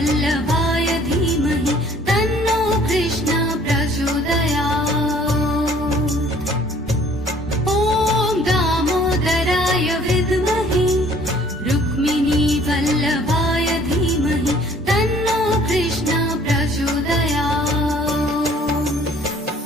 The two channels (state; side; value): normal; both; correlation 0.56